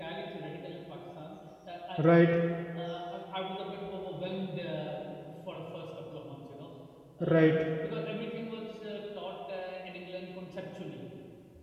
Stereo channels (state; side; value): identical; both; correlation 1.00